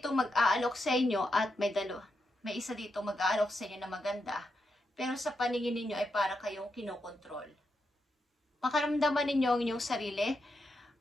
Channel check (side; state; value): both; normal; correlation 0.84